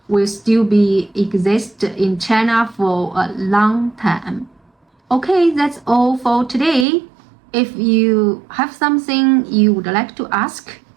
will still be exist in China for a long time. Okay, that's all for today. If you have something you would like to ask,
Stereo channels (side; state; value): left; drops out; at 6.9 s